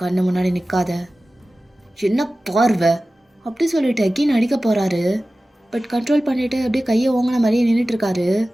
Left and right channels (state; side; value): normal; both; correlation 0.96